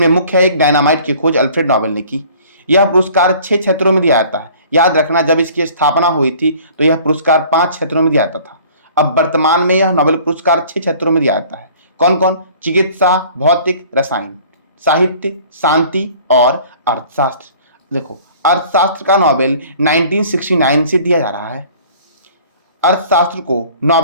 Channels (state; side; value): inverted; both; correlation -0.50